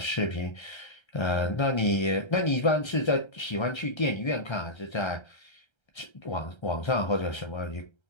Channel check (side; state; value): right; late; 1.3 ms